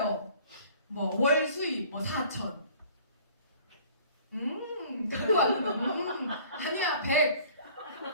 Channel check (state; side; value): inverted; both; correlation -0.52